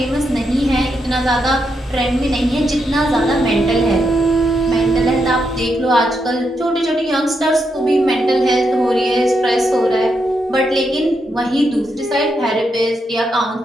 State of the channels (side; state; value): both; normal; correlation 0.82